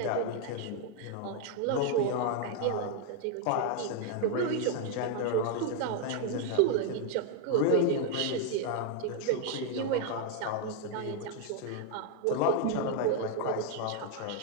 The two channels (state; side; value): different; both; correlation 0.00